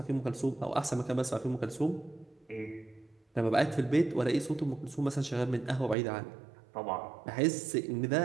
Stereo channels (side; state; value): left; drops out; at 6.0 s